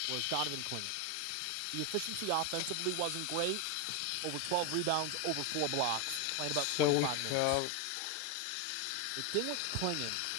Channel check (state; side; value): different; both; correlation 0.01